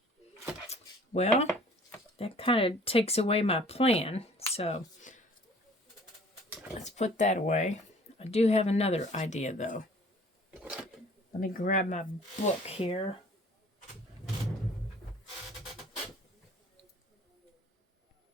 Well, that kind of takes away my plan, so let's put that away. I do have another idea, though. Let me grab my book here.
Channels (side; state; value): both; normal; correlation 0.52